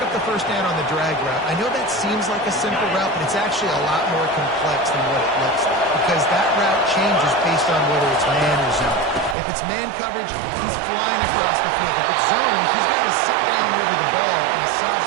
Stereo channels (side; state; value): left; drops out; at 9.3 s